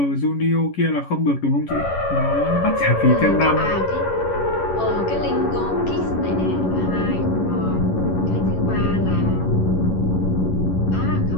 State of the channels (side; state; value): right; late; 11 ms